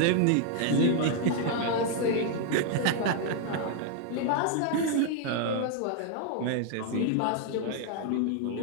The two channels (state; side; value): different; both; correlation 0.00